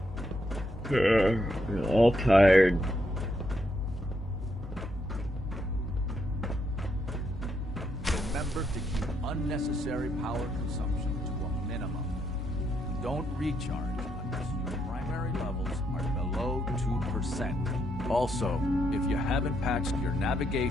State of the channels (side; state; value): both; normal; correlation 0.78